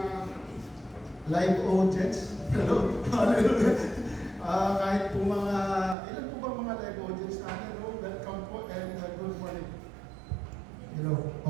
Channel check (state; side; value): drops out; left; at 6.0 s